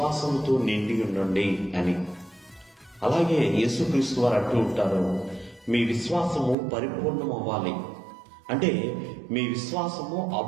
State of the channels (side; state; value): left; drops out; at 6.6 s